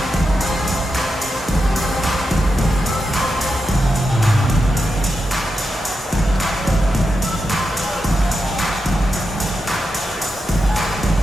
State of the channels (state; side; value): normal; both; correlation 0.87